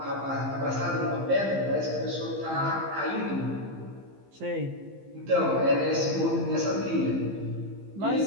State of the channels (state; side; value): late; left; 15 ms